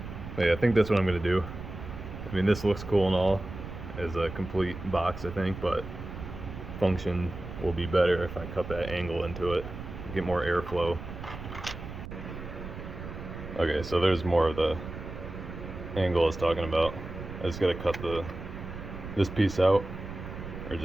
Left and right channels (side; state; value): right; noise; rumble, 10 dB below the sound